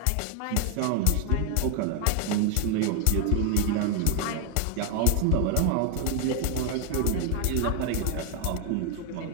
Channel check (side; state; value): both; different; correlation 0.01